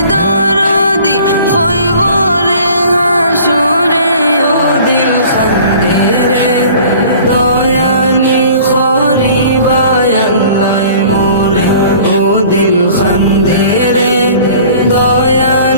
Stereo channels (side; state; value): both; inverted; correlation -0.48